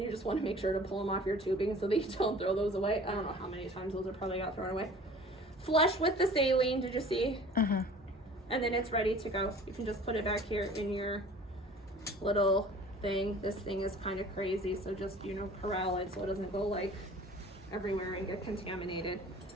just want to make sure to pull them off your tubing so that you don't throw those away. I don't know how many times those are probably got thrown away. Flush with the saline, did you see? Uh-huh. And then it's ready to go. You can just put it back here in your little thing. This thing is kind of crazy, so just, corral it so it doesn't go like everywhere and get contaminated.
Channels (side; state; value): both; normal; correlation 0.46